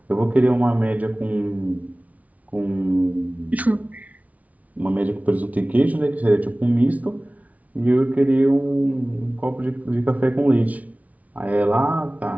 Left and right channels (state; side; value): late; left; 0.070 ms